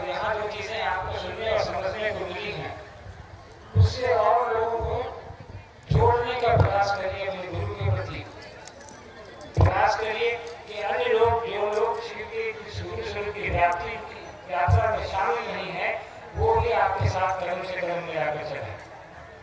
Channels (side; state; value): both; identical; correlation 1.00